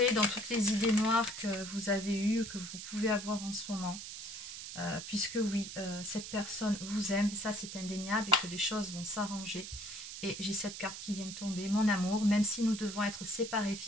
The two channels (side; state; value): right; noise; hiss, 9 dB below the sound